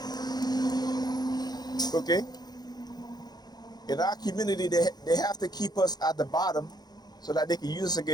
Okay? In our community, they have to keep us at the bottom so that they can use us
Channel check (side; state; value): right; late; 0.19 ms